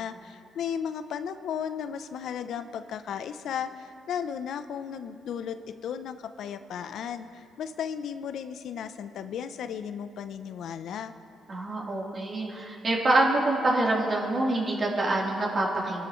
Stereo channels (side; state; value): both; normal; correlation 0.77